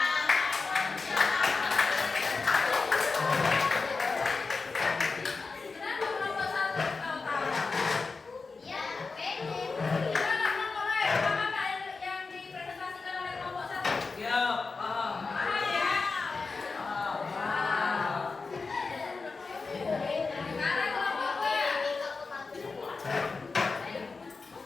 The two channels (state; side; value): quieter; right; 4.3 dB